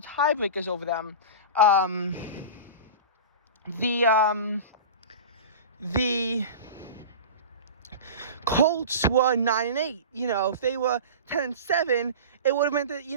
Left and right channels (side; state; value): both; inverted; correlation -0.31